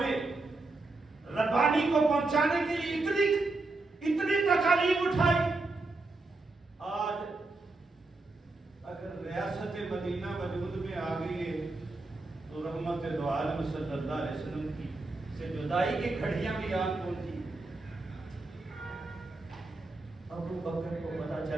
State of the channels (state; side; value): quieter; left; 3.3 dB